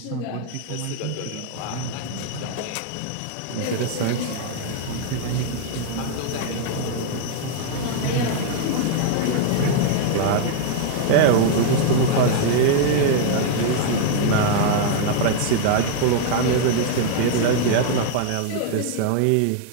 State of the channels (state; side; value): different; both; correlation -0.01